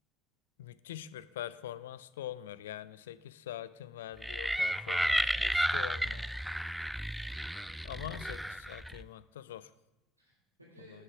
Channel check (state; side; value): normal; both; correlation 0.84